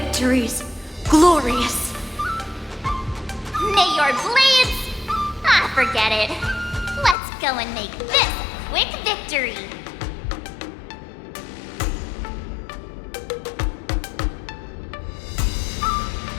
glorious. May your blades... Ah, forget it. Let's go and make this a quick victory.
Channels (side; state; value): right; drops out; at 7.2 s